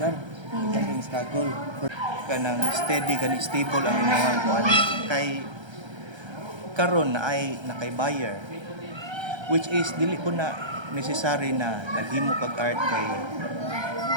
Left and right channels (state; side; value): late; left; 1.3 ms